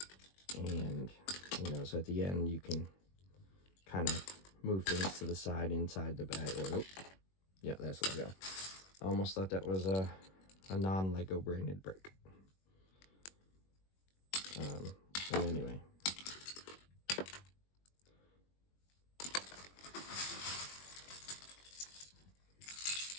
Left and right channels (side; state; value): right; late; 21 ms